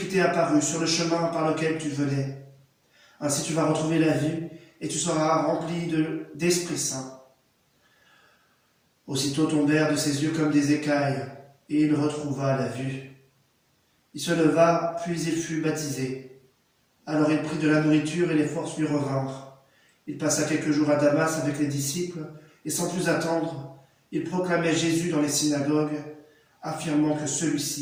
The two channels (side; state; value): both; identical; correlation 1.00